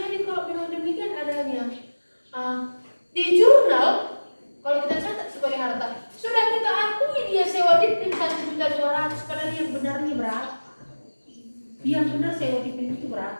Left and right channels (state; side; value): inverted; both; correlation -1.00